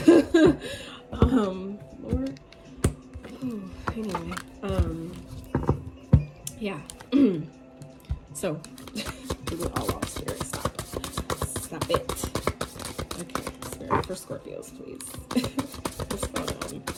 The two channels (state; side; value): identical; both; correlation 1.00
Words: Lord. Ooh, anyway, yeah. So, we go all off, Spirit. Stop it. Okay, Spirit for Scorpios, please. What's going on?